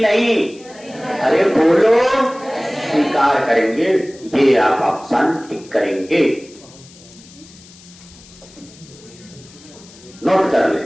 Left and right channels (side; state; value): left; noise; hiss, 23 dB below the sound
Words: नहीं? अरे बोलो, स्वीकार करेंगे, ये आप ऑप्शन टिक करेंगे, नोट कर ले।